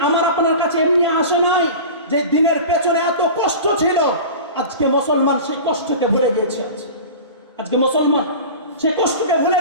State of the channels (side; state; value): both; inverted; correlation -0.34